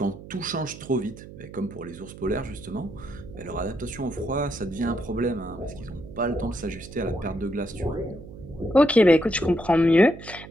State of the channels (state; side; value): noise; right; hum, 15 dB below the sound